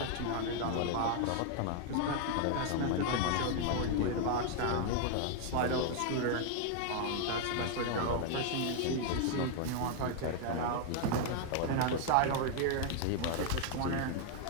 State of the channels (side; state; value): both; different; correlation 0.00